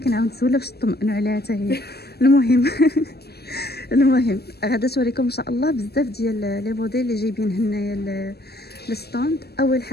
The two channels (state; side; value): late; right; 0.47 ms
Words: نسولها باش تطمئنوا عليها حتى هي. المهم المهم غادا توريكم ان شاء الله بزاف ديال لي موديل اللي جايبين هنايا الستوند. اول